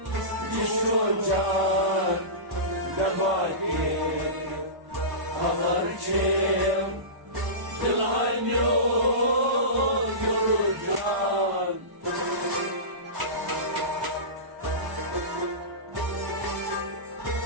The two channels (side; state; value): left; late; 1.0 ms